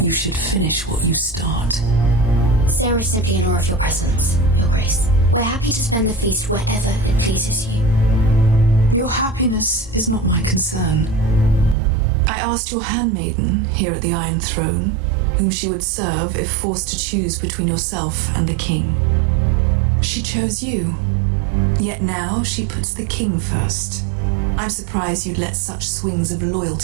you should finish what you start. Sarah is simply in awe of your presence, Your Grace. We're happy to spend the feast wherever it pleases you. Your happiness is not my concern. I asked your handmaiden here at the Iron Throne whom she would serve if forced to choose between yourself and the king. She chose you. Yet now she puts the king first. I'm surprised you'd let such swings of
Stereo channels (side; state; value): left; drops out; at 11.8 s